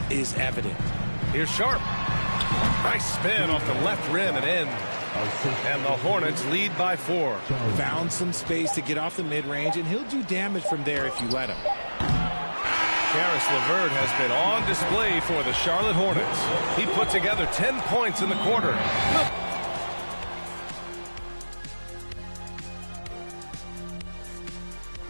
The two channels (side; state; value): both; inverted; correlation -1.00